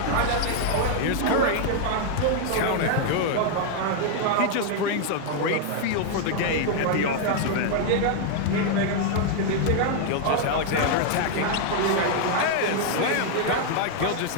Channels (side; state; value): both; different; correlation 0.00